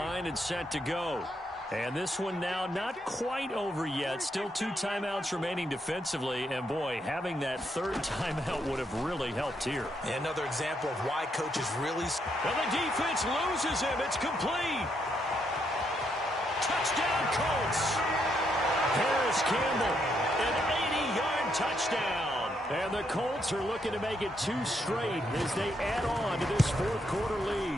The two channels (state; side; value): normal; both; correlation 0.77